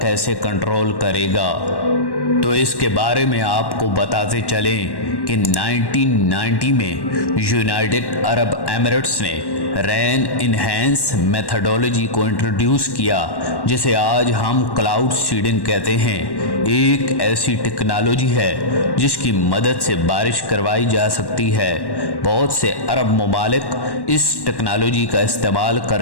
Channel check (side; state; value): right; late; 1.1 ms